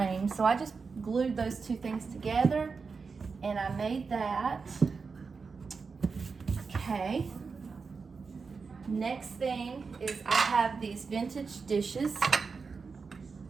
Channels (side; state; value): left; quieter; 4.9 dB